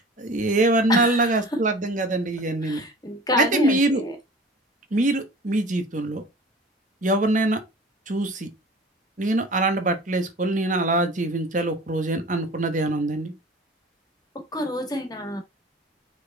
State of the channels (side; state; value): both; normal; correlation 0.42